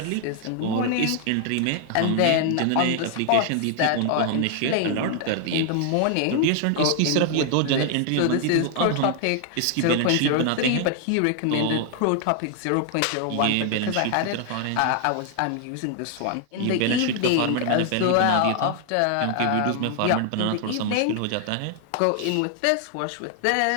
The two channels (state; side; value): different; both; correlation 0.00